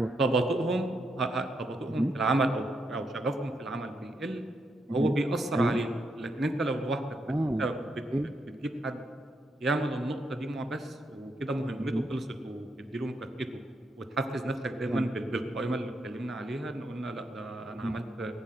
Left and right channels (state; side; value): normal; both; correlation 0.80